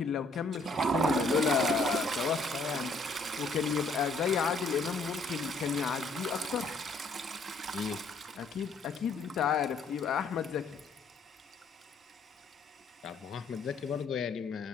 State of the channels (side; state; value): right; quieter; 3.3 dB